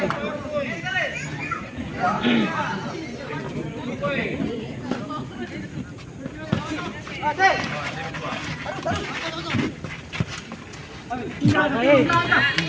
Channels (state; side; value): identical; both; correlation 1.00